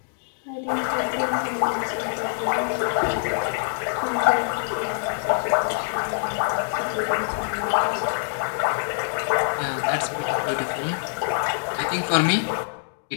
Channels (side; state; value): right; silent; digital silence